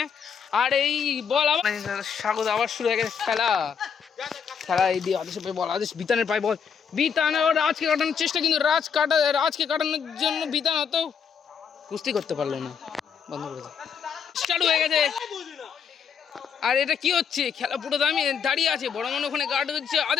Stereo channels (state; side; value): quieter; right; 7.0 dB